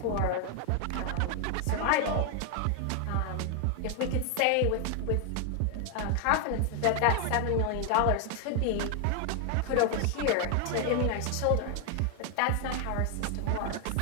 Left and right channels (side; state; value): both; different; correlation 0.00